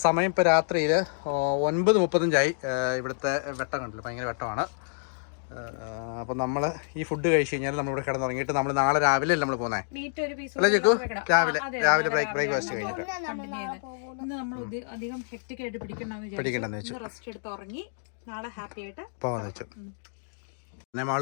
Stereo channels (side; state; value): right; silent; digital silence